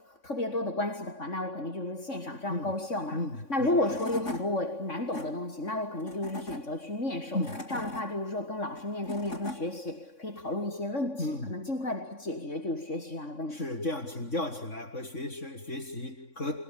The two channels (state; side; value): late; right; 3.6 ms